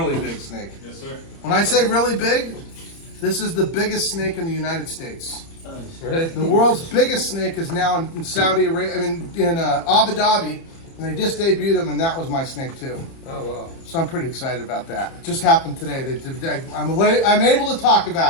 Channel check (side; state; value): right; late; 30 ms